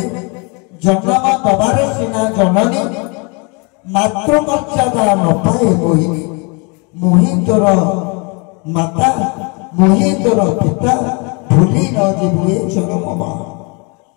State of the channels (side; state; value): right; quieter; 31.9 dB